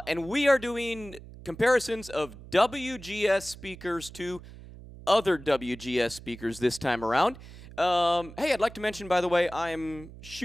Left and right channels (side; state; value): right; noise; hum, 17 dB below the sound